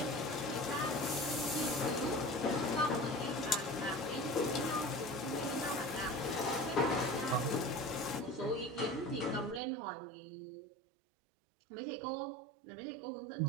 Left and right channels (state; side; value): drops out; left; at 9.6 s